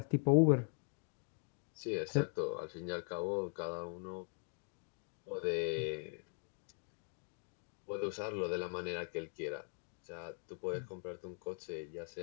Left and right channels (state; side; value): silent; right; 50 dB below the other